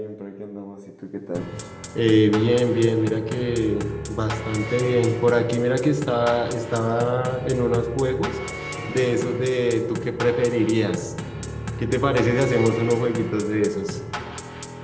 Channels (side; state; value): both; identical; correlation 1.00